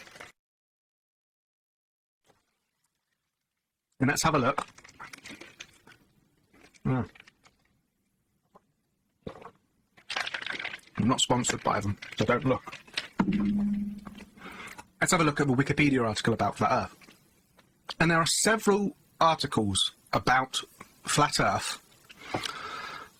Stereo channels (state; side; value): identical; both; correlation 1.00